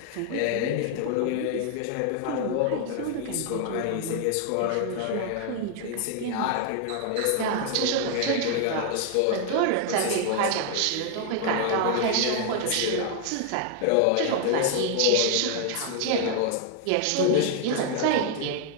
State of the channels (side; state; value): both; different; correlation 0.00